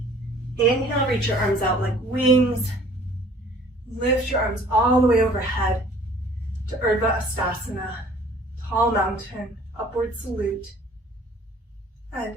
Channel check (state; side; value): normal; both; correlation 0.53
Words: Inhale, reach your arms out like wings. Lift your arms all the way overhead to Urdhva Hastasana, tall mountain, upward salute.